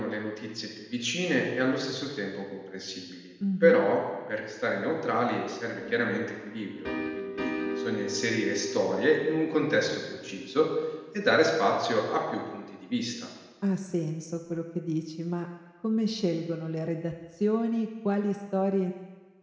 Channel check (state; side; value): identical; both; correlation 1.00